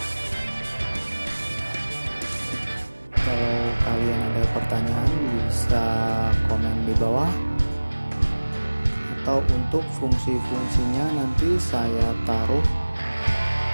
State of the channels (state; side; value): inverted; both; correlation -1.00